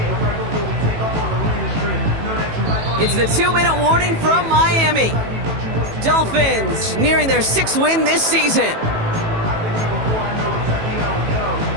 It's the 2-minute warning from Miami. Dolphins nearing their 6th win this season.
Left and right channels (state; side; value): late; left; 18 ms